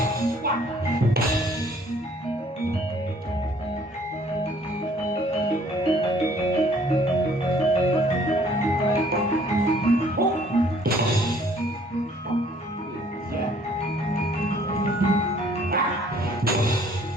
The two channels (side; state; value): both; normal; correlation 0.59